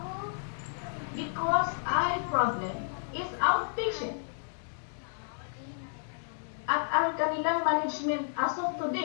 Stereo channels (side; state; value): right; silent; digital silence